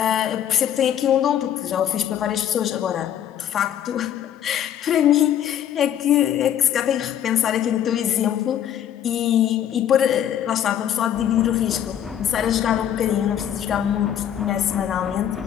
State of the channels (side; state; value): right; quieter; 10.2 dB